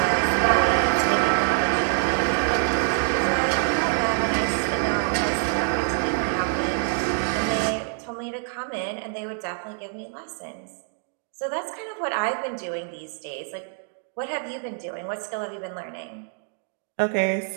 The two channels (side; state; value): left; silent; 61 dB below the other